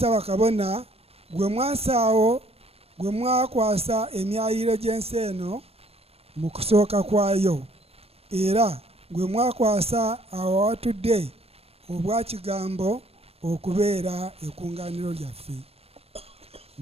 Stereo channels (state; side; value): late; left; 0.29 ms